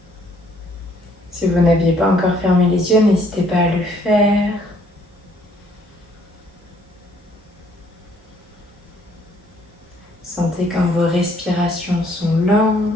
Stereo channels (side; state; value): both; normal; correlation 0.64